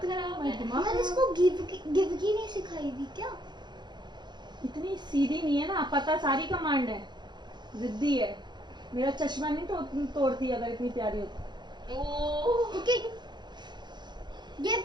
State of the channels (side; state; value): left; late; 0.21 ms